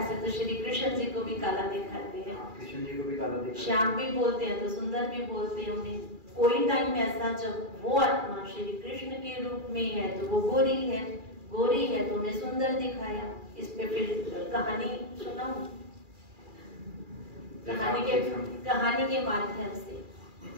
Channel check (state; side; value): late; left; 2.4 ms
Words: तो श्री कृष्ण जी को भी काला दिखाते हैं, कृष्ण जी को भी काला दिखाते हैं, श्याम भी बोलते हैं तो सुंदर भी बोलते हैं उन्हें। कोई टाइम ऐसा जब वो आत्मा श्री कृष्ण के रूप में है तो वो गोरी है तो उन्हें सुंदर दिखाया। इस पे फिर कहानी सुनाऊं, कहानी के माध्यम से